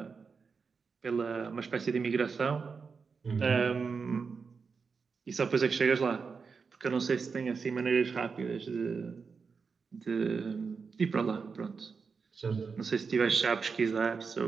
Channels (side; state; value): left; quieter; 5.2 dB